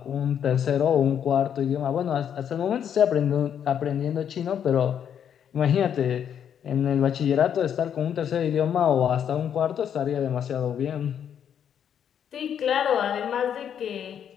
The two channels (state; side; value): quieter; right; 8.8 dB